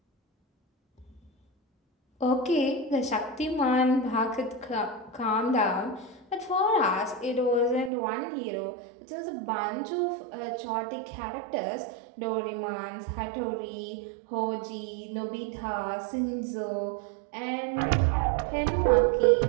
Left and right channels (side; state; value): left; drops out; at 7.9 s